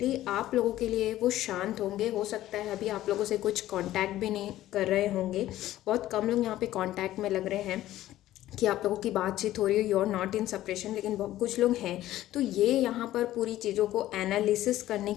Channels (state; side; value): quieter; right; 14.3 dB